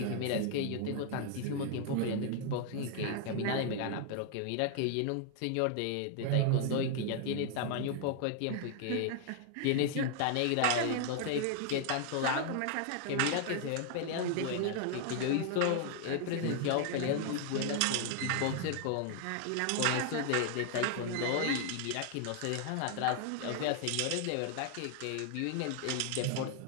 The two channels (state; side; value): different; both; correlation 0.00